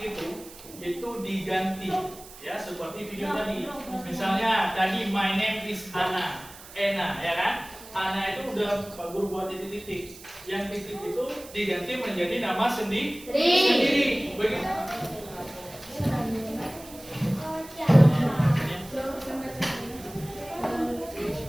itu diganti ya, seperti video tadi. Misalnya tadi my name is Ana, ya kan? Ana itu udah Pak Guru buat titik-titik. Yang titik itu diganti menjadi nama sendiri. Begitu.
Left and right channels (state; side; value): noise; right; hiss, 18 dB below the sound